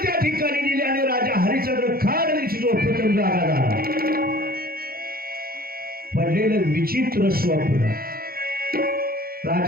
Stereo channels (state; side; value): late; left; 0.44 ms